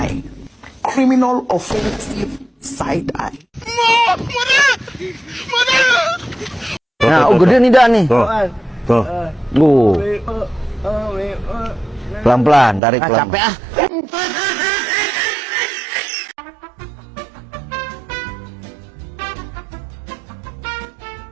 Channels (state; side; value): drops out; left; at 12.8 s